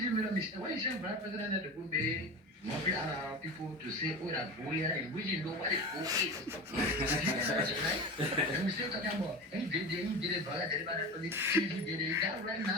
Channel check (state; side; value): normal; both; correlation 0.28